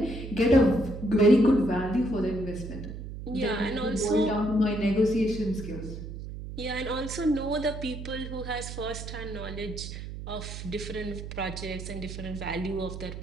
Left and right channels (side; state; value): right; noise; hum, 9 dB below the sound